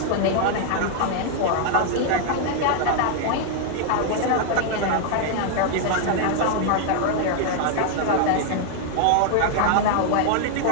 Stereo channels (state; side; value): different; both; correlation 0.00